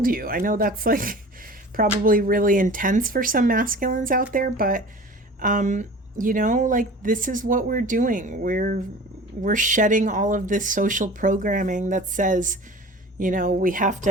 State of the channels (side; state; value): both; normal; correlation 0.41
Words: you. I know that's probably really intense for some masculines out there, but this is what we're doing. we're shedding all of this social programming that says, we have